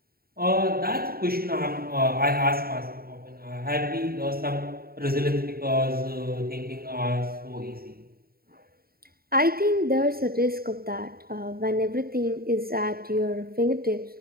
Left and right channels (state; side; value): late; left; 0.44 ms